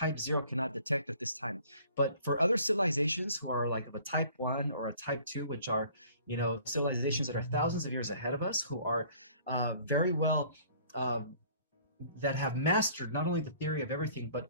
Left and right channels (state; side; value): inverted; both; correlation -0.54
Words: 0 cannot detect at this time. But for other civilizations who are like of a type 1 or a type 2, which are civilizations that are thousands of years ahead of us, who are very well that have mastered not only the theory of everything but